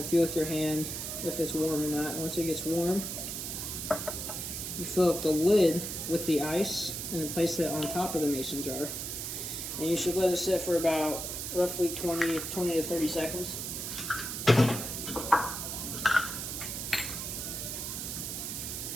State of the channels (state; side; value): noise; right; hiss, 5 dB below the sound